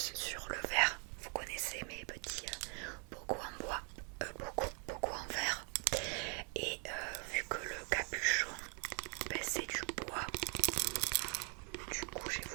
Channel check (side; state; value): left; quieter; 38.7 dB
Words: sur le verre. Vous connaissez mes petits bocaux en bois, beaucoup en verre. Et vu que le capuchon, ben, c'est du bois, du coup j'ai